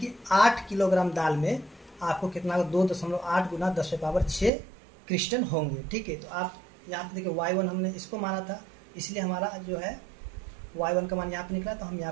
8 किलोग्राम दाल में आपको कितना 2.8 गुना 10⁻6 क्रिस्टल होंगे, ठीक है। तो आप यहाँ पे देखिए y1 हमने इसको माना था, इसलिए हमारा जो है y1 का मान यहाँ पे निकला, तो हम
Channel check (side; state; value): left; drops out; at 4.5 s